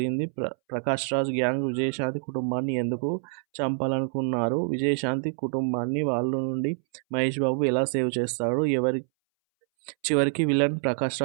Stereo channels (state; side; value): silent; left; 61 dB below the other